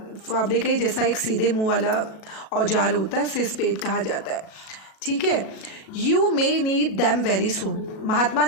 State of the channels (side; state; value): right; late; 37 ms